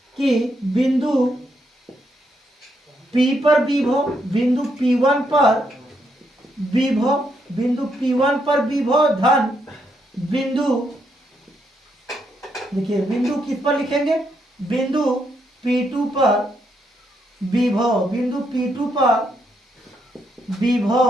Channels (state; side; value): normal; both; correlation 0.78